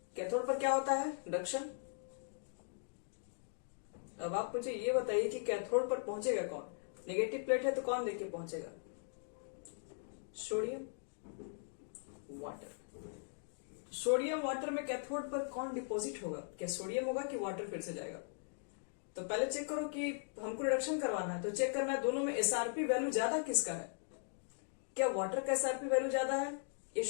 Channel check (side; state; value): right; silent; digital silence